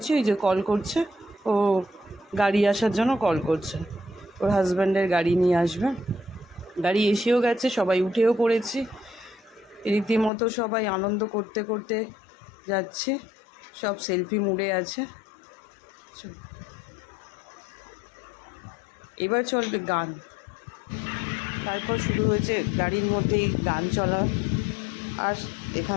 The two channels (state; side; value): drops out; right; at 10.3 s